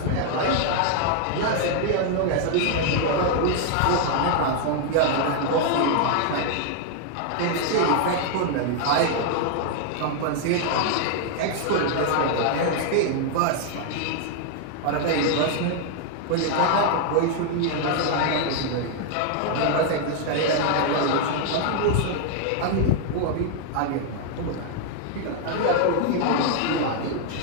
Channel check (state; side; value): different; both; correlation 0.00